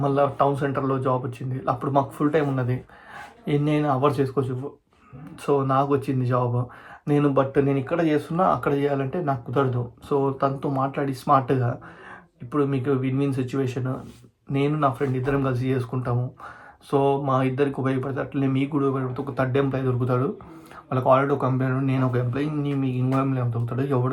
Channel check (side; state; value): both; identical; correlation 1.00